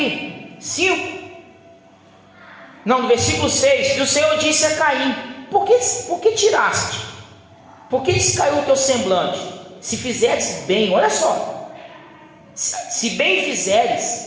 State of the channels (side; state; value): both; identical; correlation 1.00